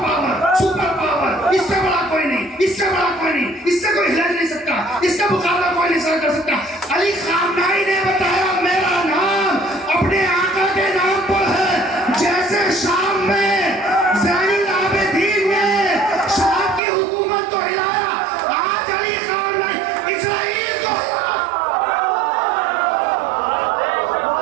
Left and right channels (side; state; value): left; drops out; at 16.8 s